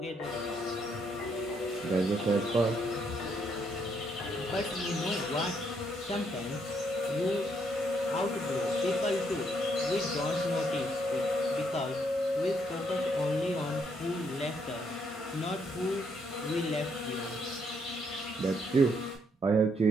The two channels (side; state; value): both; normal; correlation 0.73